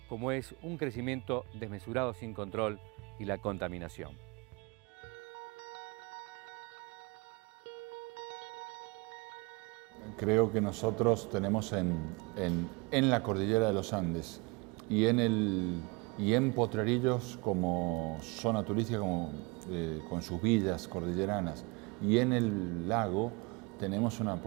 como es un crecimiento desmesurado sin control y la contaminación. Creo que nosotros tenemos en la cordillera de los Andes y en Potrerillos como zona turística, con sus villas cordilleranas, y en el lago tenemos una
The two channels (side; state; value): left; quieter; 28.4 dB